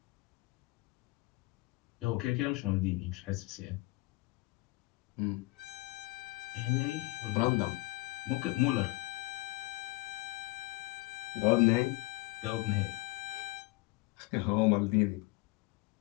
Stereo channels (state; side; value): quieter; right; 22.1 dB